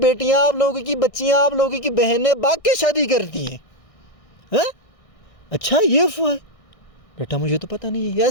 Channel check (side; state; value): right; late; 1.6 ms